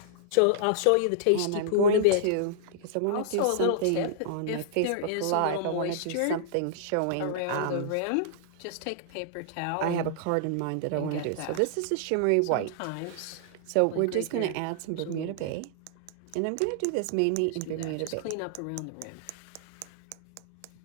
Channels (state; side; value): different; both; correlation -0.01